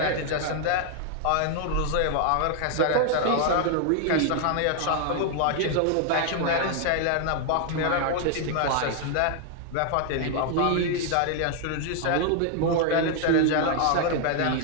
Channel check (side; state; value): both; different; correlation 0.00